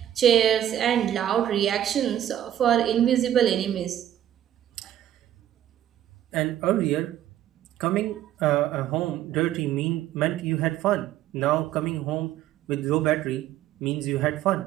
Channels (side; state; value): left; quieter; 11.6 dB